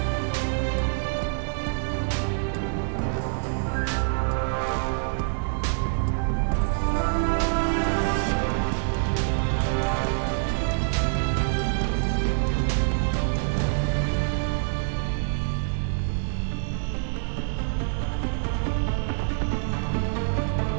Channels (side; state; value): left; silent; digital silence